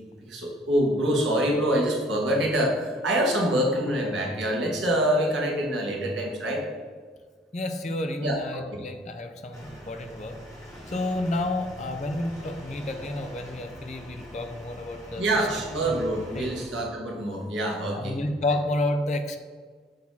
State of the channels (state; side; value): normal; both; correlation 0.55